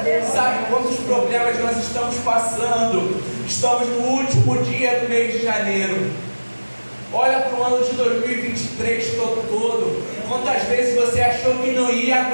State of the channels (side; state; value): both; inverted; correlation -1.00